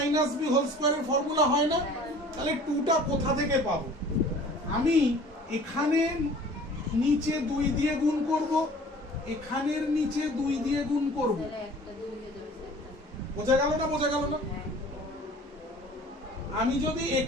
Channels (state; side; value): normal; both; correlation 0.47